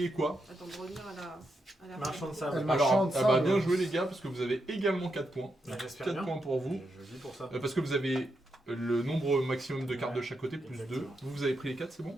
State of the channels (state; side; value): normal; both; correlation 0.83